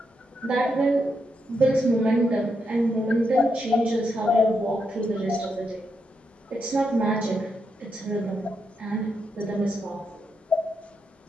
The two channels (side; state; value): both; normal; correlation 0.82